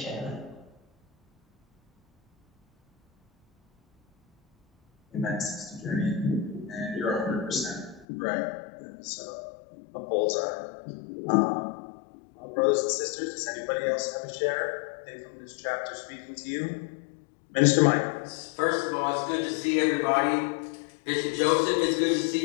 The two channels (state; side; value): drops out; right; at 8.1 s